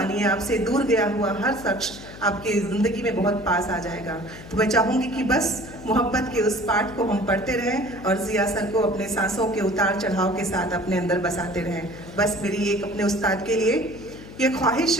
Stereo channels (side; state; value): left; noise; hum, 16 dB below the sound